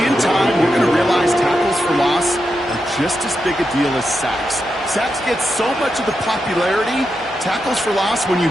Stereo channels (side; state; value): both; normal; correlation 0.86